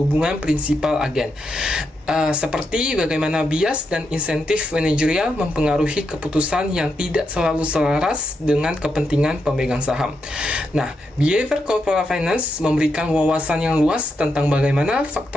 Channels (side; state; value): both; normal; correlation 0.83